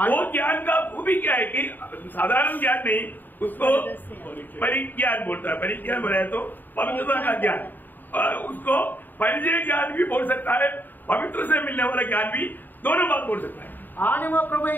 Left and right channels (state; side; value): late; right; 0.089 ms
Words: वो ज्ञान का खूबी क्या है कि साधारण ज्ञान नहीं, उसको परिज्ञान बोलता है. परिज्ञान बोला है तो पवित्रता का ज्ञान. उसको परिचय ज्ञान भी बोल सकता है, पवित्र से मिलने वाला ज्ञान भी, दोनों बात बोल सकता है. आणि मग प्रभू